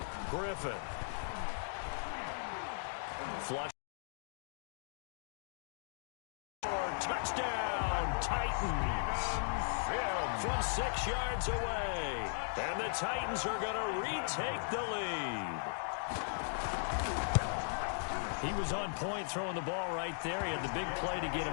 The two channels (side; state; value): right; silent; digital silence